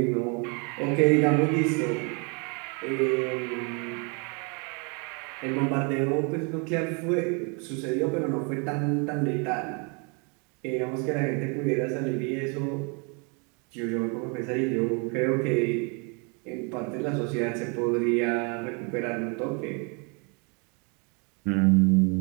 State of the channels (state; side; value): quieter; left; 34.2 dB